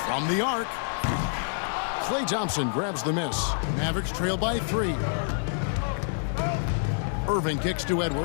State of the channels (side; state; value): right; silent; digital silence